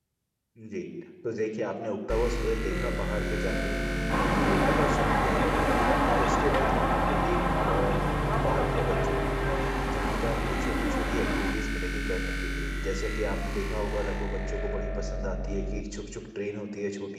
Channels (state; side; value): identical; both; correlation 1.00